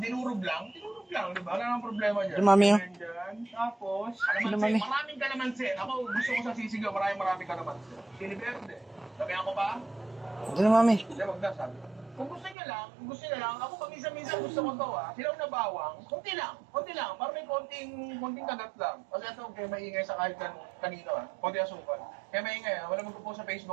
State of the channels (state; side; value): drops out; left; at 12.6 s